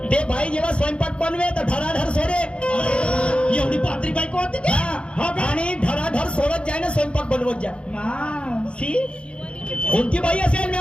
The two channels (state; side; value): late; right; 0.058 ms